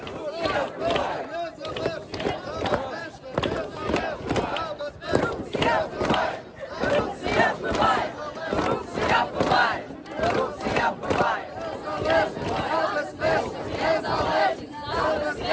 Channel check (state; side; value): identical; both; correlation 1.00